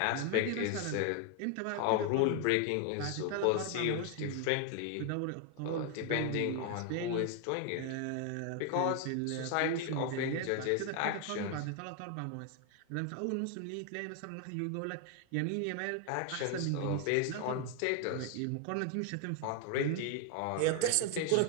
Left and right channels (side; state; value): both; different; correlation 0.01